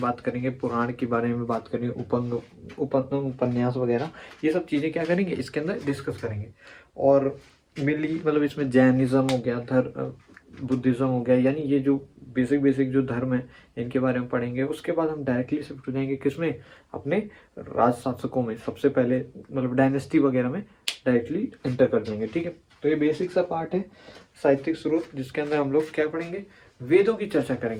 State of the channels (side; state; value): both; identical; correlation 1.00